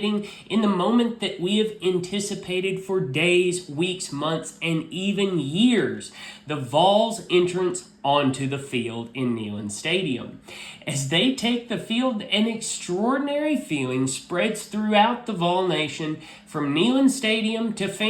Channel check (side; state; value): both; identical; correlation 1.00